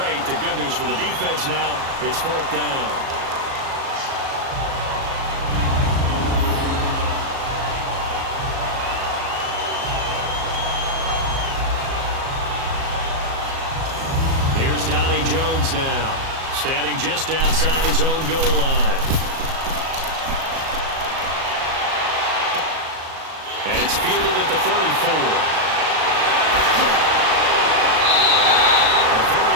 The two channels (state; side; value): late; left; 37 ms